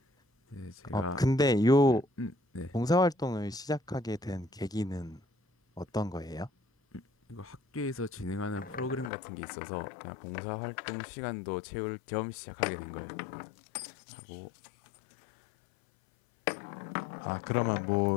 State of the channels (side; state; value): right; drops out; at 9.1 s